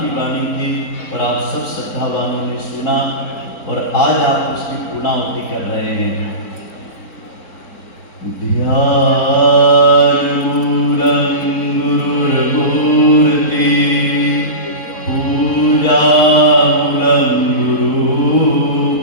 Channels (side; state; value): right; late; 4.1 ms